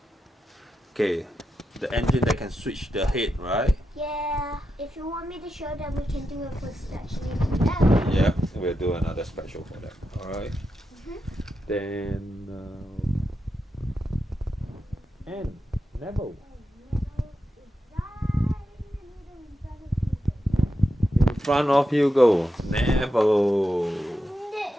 Okay. The engine that can switch the head, right? Yeah. If you want me to show them, we can do it for actually. Yeah, we'll do another special for that. Alright. Then and Neville. In front of Hugo. Neville.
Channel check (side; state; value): both; normal; correlation 0.87